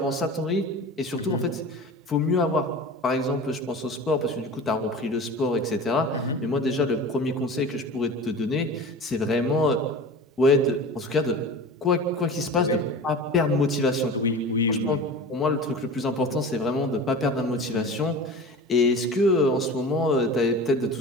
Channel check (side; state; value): both; normal; correlation 0.35